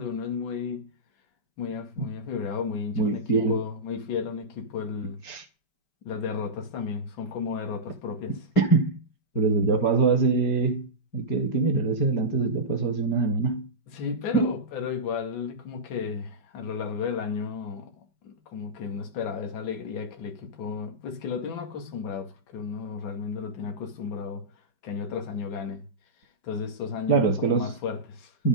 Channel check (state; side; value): late; right; 5.1 ms